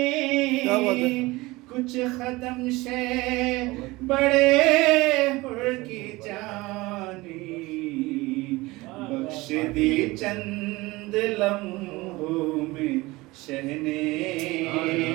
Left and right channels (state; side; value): quieter; left; 21.3 dB